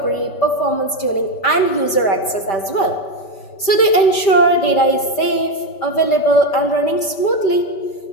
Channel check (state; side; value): late; right; 5.1 ms